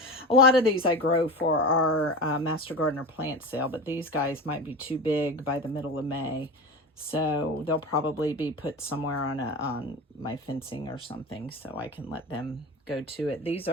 lot of these I grow for our Master Gardener plant sale, but these guys might be too big by the middle of May. So they'll probably be put somewhere on my fencing or something so I can let them go to it. These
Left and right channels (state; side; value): normal; both; correlation 0.27